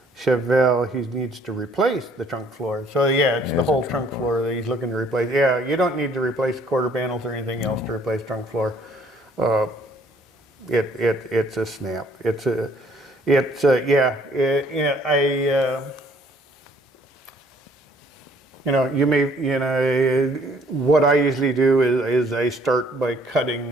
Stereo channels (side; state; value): both; normal; correlation 0.61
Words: Chevelle, he needs to replace the trunk floor. So yeah, it's the whole trunk floor that he's looking to replace. Yeah, you don't need to replace quarter panels or anything else to replace trunk floor. It's a snap. What I usually do is I start by